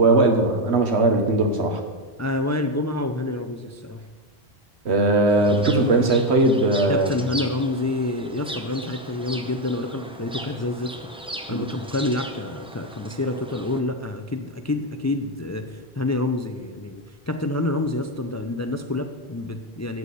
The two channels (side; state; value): both; normal; correlation 0.08